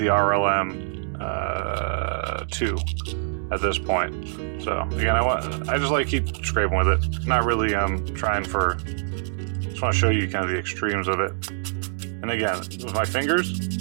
RLM 2 at this point. So again, I just like keep scraping with it. Not really trying for, just want to show you kind of the extremes of it. And again, with my fingers,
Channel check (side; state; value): left; silent; 62 dB below the other